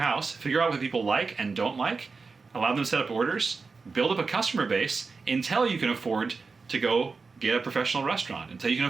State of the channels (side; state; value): left; quieter; 4.5 dB